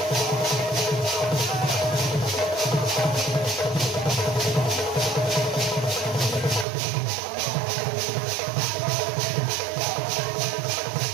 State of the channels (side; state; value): left; drops out; at 6.7 s